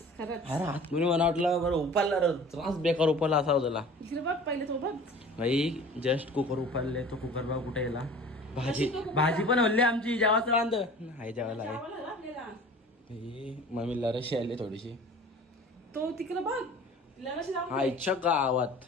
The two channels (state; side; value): normal; both; correlation 0.43